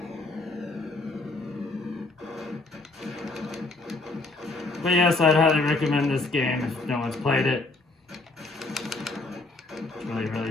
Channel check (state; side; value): quieter; right; 3.2 dB